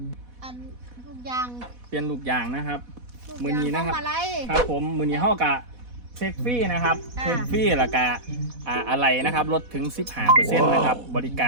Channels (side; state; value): left; late; 4.1 ms